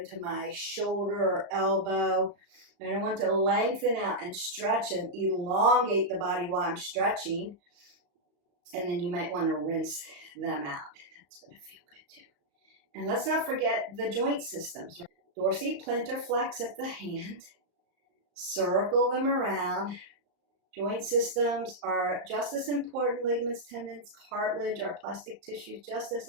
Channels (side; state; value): left; late; 35 ms